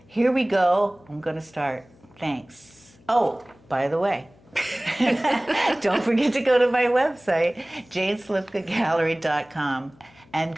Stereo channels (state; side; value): noise; left; hum, 28 dB below the sound